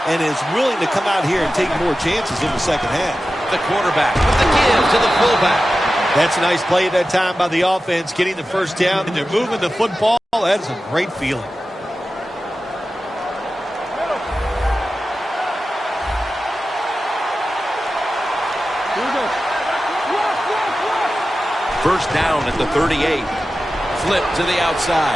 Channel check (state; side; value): normal; both; correlation 0.94